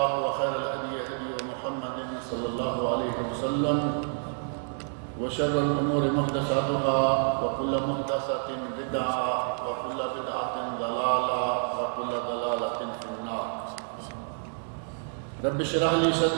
وخير الهدي هدي محمد صلى الله عليه وسلم وشر الأمور محدثاتها وكل محدثة بدعة وكل بدعة ضلالة وكل ضلالة في النار. رب اشرح لي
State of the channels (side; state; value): left; silent; digital silence